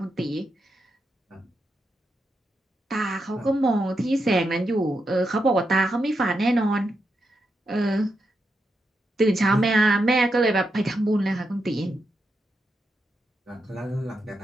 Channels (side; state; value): both; normal; correlation 0.85